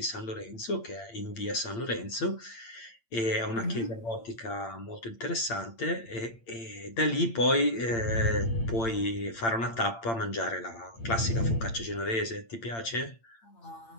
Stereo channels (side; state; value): right; late; 8.8 ms